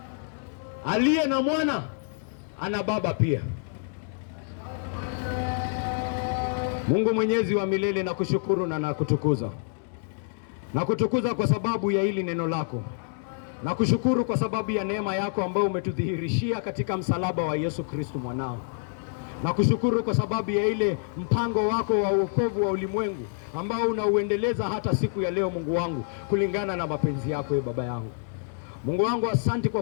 Aliye na mwana ana baba pia. Mungu Mwenyezi wa milele, nakushukuru na nakutukuza. Nakutukuza kwa sababu ya hili neno lako. Nakushukuru kwa sababu ya neema yako ambayo umetudhihirishia katika msalaba wa Yesu Kristo mwanao. Nakushukuru kwa sababu ya ile mpango wako wa wokovu wa ulimwengu ambao unauendeleza hata siku ya leo, Mungu wangu, kulingana na mapenzi yako, Baba yangu. Mungu wangu, asante kwa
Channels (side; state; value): right; silent; digital silence